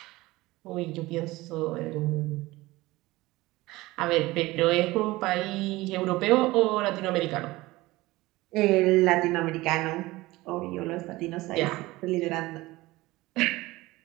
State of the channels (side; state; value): left; quieter; 19.6 dB